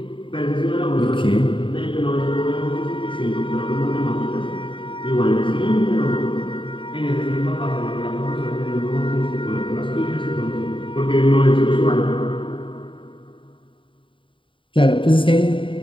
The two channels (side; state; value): right; late; 0.25 ms